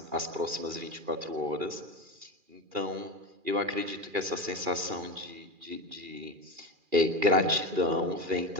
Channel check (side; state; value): left; late; 2.4 ms